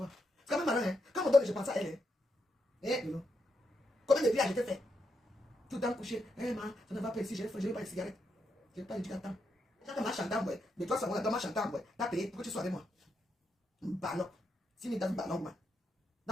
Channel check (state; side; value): normal; both; correlation 0.81